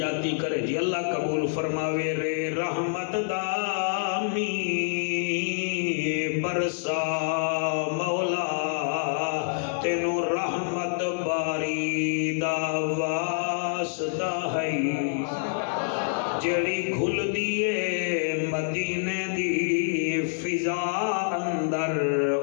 کرے جی اللہ قبول فرماوے رے رحمت دامی برسا مولا تینو رحمت باری دا واسطہ ہے جڑی گھل دیے مدینے دی فضا اندر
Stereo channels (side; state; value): right; silent; digital silence